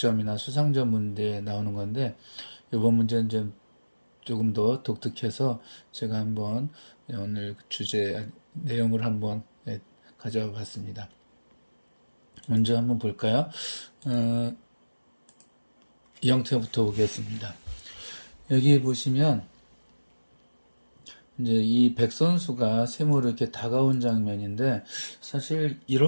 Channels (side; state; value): both; inverted; correlation -1.00